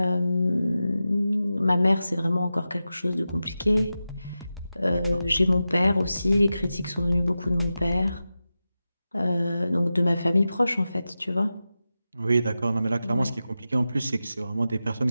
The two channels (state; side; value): inverted; both; correlation -0.93